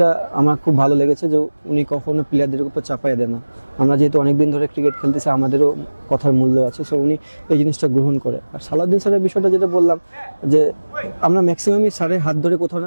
আমার খুব ভালো লেগেছে, যে উনি কখনো প্লেয়ারদের উপর চাপাইয়ে দেন না। আমরা যেহেতু অনেকদিন ধরে ক্রিকেট খেলতেছি, আমাদেরও কথার মূল্য আছে, সো উনি এই জিনিসটা গ্রহণ করে। আর সালাউদ্দিন স্যারের বিষয়টা যেটা বললাম, যে আমরা ম্যাক্সিমামই স্যারের হাত ধরে কোথাও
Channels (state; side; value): inverted; both; correlation -1.00